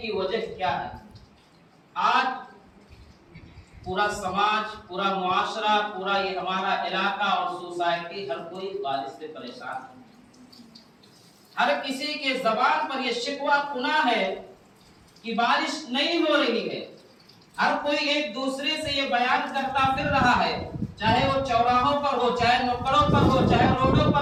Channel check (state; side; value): identical; both; correlation 1.00